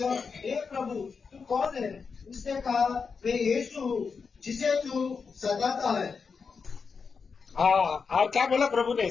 हे प्रभु तू कौन है? उसने कहा, मैं यीशु हूँ जिसे तू सताता है। और क्या बोला प्रभु ने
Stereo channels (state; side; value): quieter; right; 5.4 dB